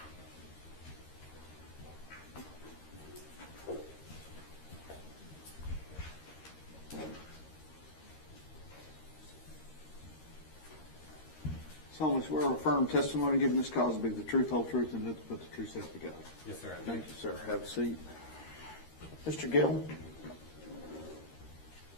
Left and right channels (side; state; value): right; late; 13 ms